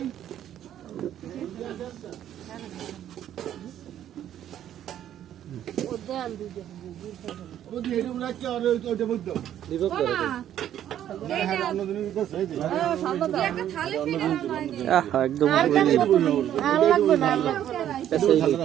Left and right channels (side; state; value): left; quieter; 11.0 dB